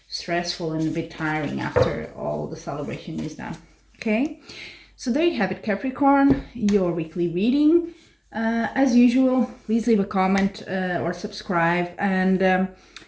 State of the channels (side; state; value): both; identical; correlation 1.00